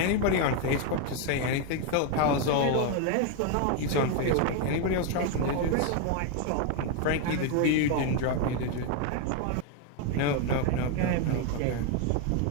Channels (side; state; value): both; different; correlation 0.01